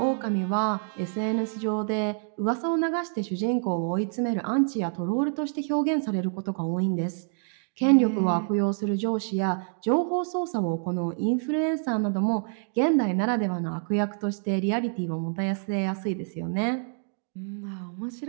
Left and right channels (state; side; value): silent; left; 60 dB below the other